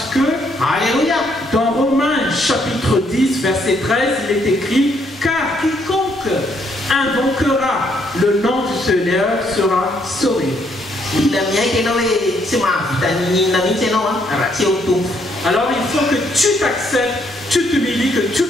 que alléluia, dans Romains chapitre 10 verset 13 il est écrit car quiconque invoquera le nom du Seigneur sera sauvé. Alors il faut que tu t'acceptes, tu t'humilies, que tu ne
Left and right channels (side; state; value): both; normal; correlation 0.71